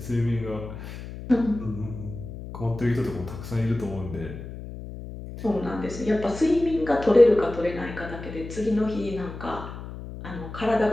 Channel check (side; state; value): left; noise; hum, 11 dB below the sound